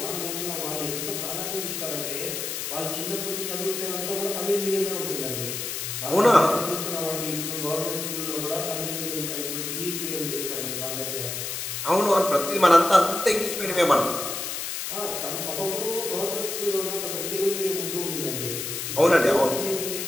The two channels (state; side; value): noise; left; hiss, 4 dB below the sound